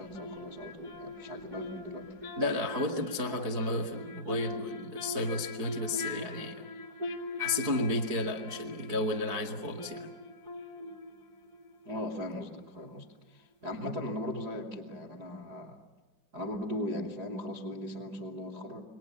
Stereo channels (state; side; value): late; left; 4.7 ms